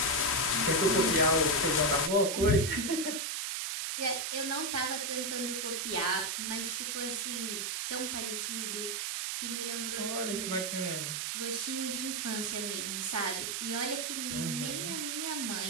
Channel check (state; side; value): noise; right; hiss, 1 dB below the sound